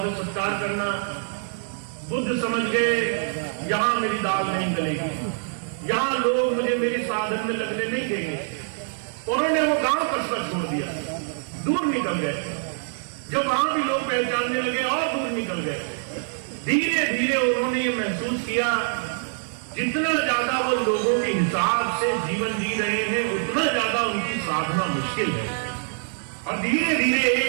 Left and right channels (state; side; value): silent; left; 56 dB below the other